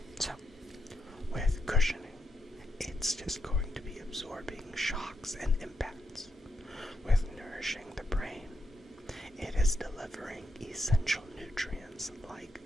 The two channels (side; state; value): both; normal; correlation 0.82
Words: So, with cushioning, it's just going to be absorbing shocks and impacts. With nourishing the brain, it is delivering essential nutrients like